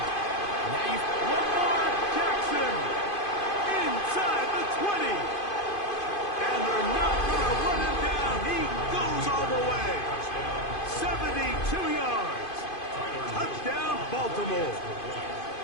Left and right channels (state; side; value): late; right; 2.5 ms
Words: now you've... Lamar Jackson inside the 20. And they're not going to run him down. He goes all the way. 72 yards. Touchdown, Baltimore.